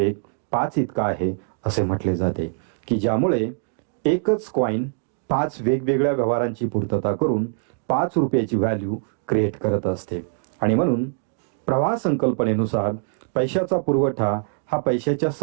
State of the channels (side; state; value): left; silent; digital silence